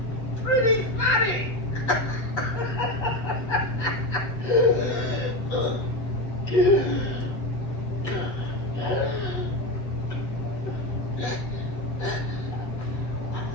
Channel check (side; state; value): right; late; 8.0 ms